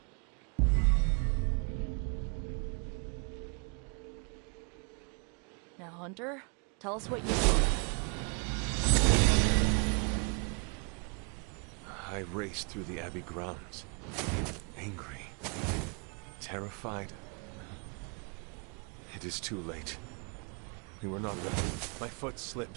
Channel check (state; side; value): quieter; left; 35.6 dB